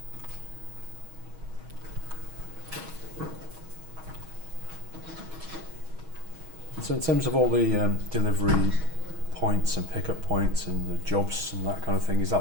So in terms of all the delivery points and pickup points and the jobs and that kind of thing, is that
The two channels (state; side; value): late; left; 6.3 ms